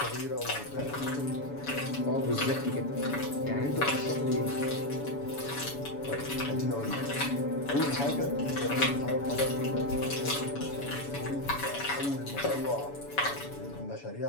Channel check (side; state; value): right; late; 7.1 ms